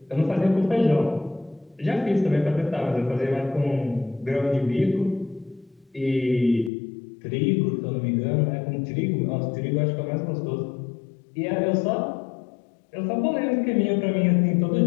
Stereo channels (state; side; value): drops out; right; at 6.7 s